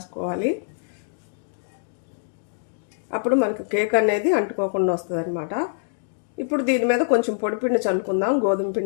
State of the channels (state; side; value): silent; right; digital silence